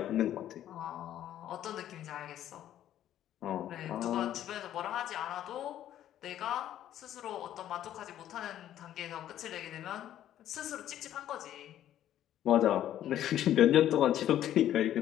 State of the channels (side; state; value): right; quieter; 11.8 dB